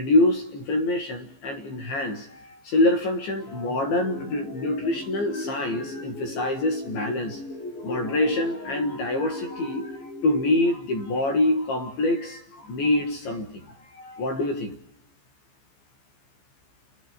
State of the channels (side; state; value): right; late; 15 ms